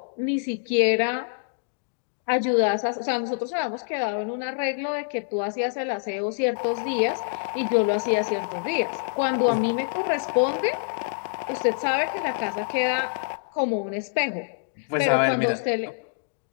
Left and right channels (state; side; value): silent; right; digital silence